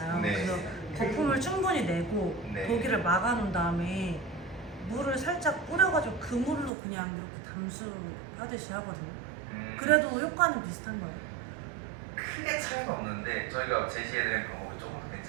네. 그래서 거품을 충분히 내고 네. 도기를 막아놓은 다음에 물을 살짝 뿌려가지고 그 물로 그냥 이렇게 담수하듯이 하거든요. 그래도 효과는 비슷한 거예요. 크게 차이는 없는데 저희가 제시해드린 방법이 조금 더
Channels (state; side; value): drops out; left; at 6.7 s